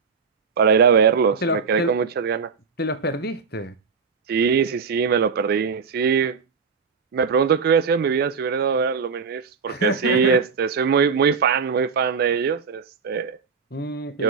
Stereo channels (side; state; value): left; quieter; 5.6 dB